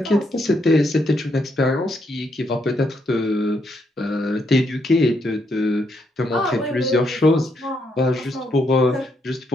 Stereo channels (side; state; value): both; normal; correlation 0.77